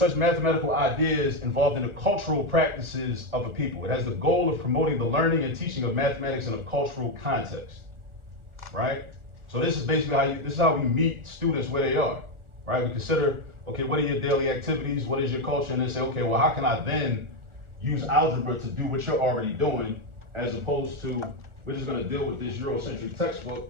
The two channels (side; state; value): left; late; 1.4 ms